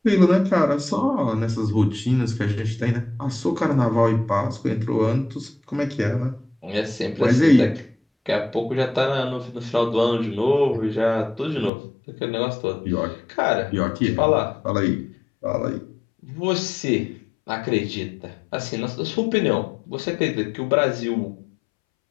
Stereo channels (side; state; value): right; drops out; at 11.7 s